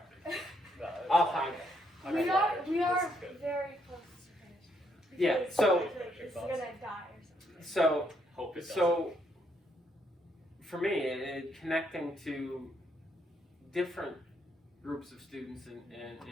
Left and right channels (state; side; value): normal; both; correlation 0.73